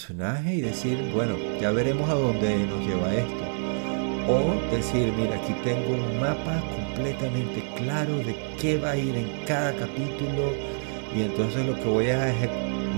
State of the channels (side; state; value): left; silent; 57 dB below the other